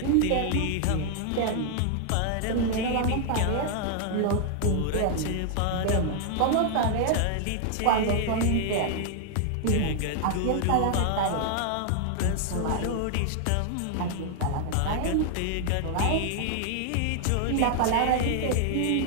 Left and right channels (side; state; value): both; different; correlation 0.00